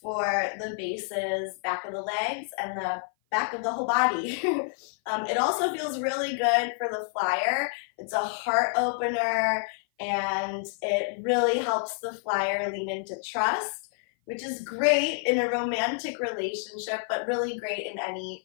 the bases, back of the legs, and the back of the whole body. It also feels really good for the flyer. It's a heart opener, and it really helps the flyer lean into trust, which is great in a romantic relationship, but really great in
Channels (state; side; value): silent; right; 55 dB below the other